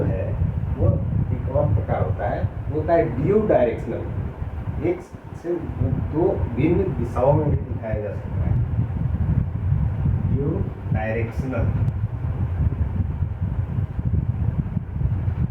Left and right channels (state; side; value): identical; both; correlation 1.00